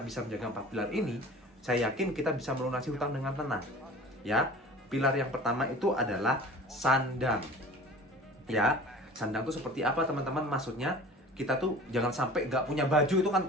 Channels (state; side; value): normal; both; correlation 0.42